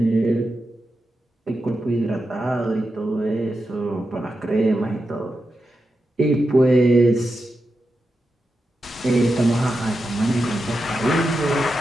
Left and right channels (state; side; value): normal; both; correlation 0.89